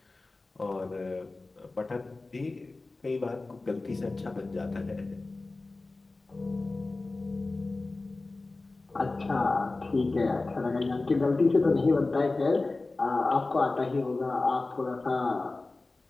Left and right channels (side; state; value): right; quieter; 3.3 dB